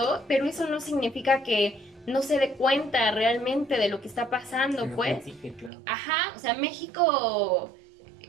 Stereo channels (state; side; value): drops out; left; at 5.7 s